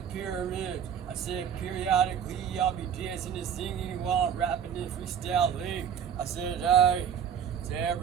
pyramid. I said periodically I'll be dancing and singing while I'm rapping and freestyling. I said, hey, to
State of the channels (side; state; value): left; quieter; 8.3 dB